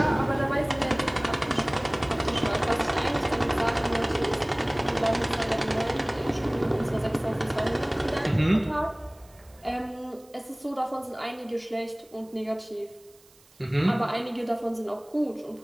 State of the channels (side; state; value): right; noise; hiss, 28 dB below the sound